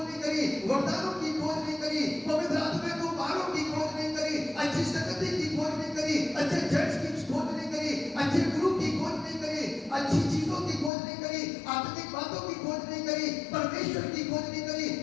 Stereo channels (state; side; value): drops out; right; at 10.9 s